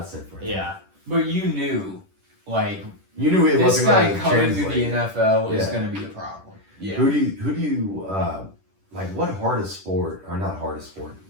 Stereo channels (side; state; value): left; late; 10 ms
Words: for him. Yeah, but you knew, like, it this wasn't guy coming to translate. the NFL is going to be a problem. Yeah. Who do you like? What hardest sport, or not hardest sport?